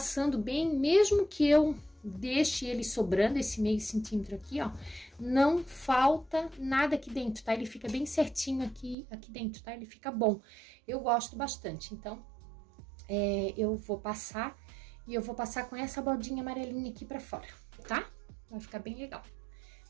bem, mesmo que eu deixe ele sobrando, esse 0,5 centímetro aqui, ó, não falta nada aqui dentro, tá? Ele fica bem certinho aqui dentro, tá? Ele fica bom. Eu gosto bastante, então eu vou passar. E eu vou passar com essa bordinha amarelinha aqui pra fora, tá? Vai ficar bem legal.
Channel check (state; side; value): drops out; left; at 9.0 s